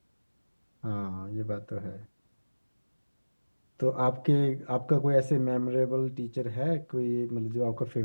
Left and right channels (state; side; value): inverted; both; correlation -1.00